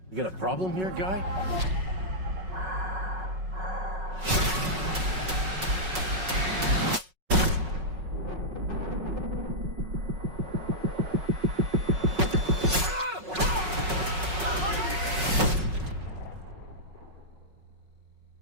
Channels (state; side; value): late; left; 5.4 ms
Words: You got a problem here, guy?